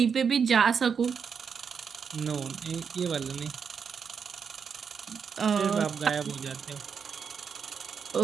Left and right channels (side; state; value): left; quieter; 6.5 dB